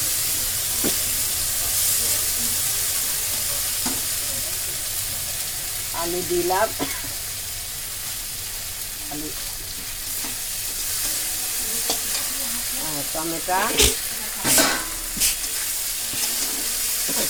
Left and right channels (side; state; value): both; identical; correlation 1.00